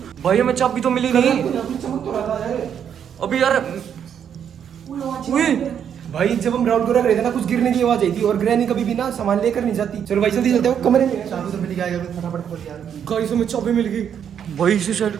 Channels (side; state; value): left; quieter; 8.5 dB